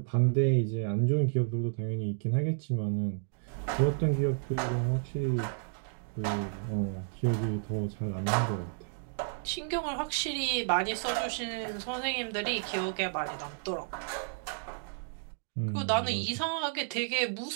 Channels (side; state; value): left; silent; digital silence